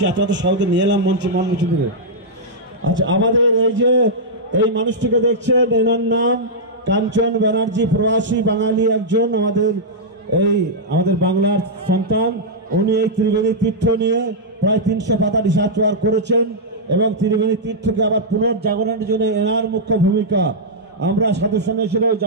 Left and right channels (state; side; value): normal; both; correlation -0.09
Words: আপনারা তো সবাইকে নিয়ে এলাম মঞ্চে থেকে। আচ্ছা, আমাদের এই যে এই মানুষটিকে দেখছেন, এনার নাম কাঞ্চন ব্যানার্জি, প্রবাসী বাঙালি একজন, আমাদের বাংলার সন্তান। উনি এই ত্রিবেণী তীর্থ নিয়ে প্রায় 300 পাতা রিসার্চ ওয়ার্ক করেছেন এবং ত্রিবেণী তীর্থকে আবার পুনর্জাগরণের জন্য এনার মুখ্য ভূমিকা। আমরা সাধু সন্ন্যাসীরাও